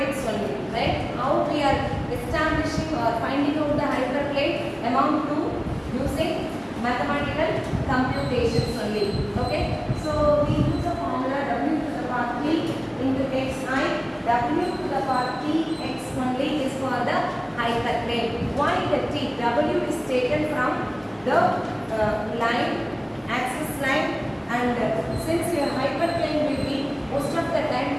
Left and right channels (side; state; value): both; identical; correlation 1.00